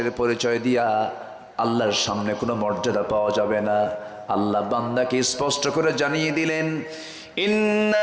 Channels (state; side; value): identical; both; correlation 1.00